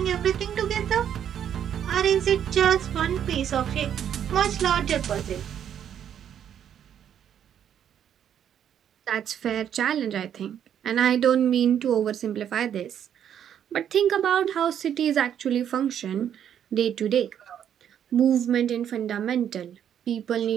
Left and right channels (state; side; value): quieter; left; 9.4 dB